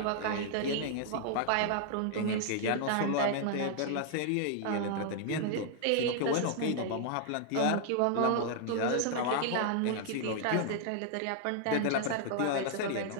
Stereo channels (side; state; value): both; different; correlation -0.01